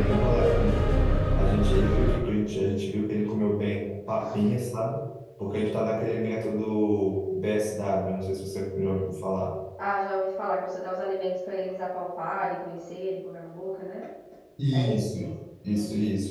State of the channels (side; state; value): both; identical; correlation 1.00